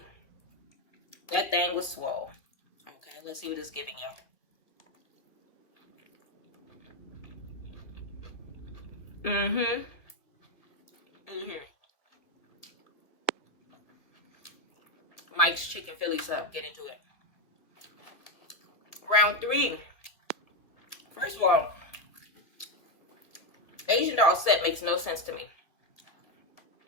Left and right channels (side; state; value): right; late; 2.0 ms